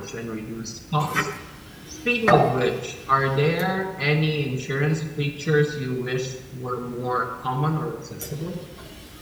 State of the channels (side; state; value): both; identical; correlation 1.00